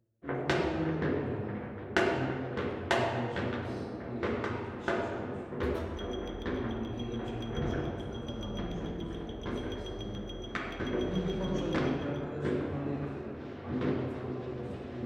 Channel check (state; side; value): identical; both; correlation 1.00